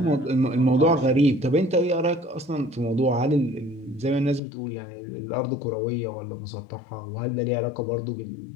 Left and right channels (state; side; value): drops out; right; at 4.4 s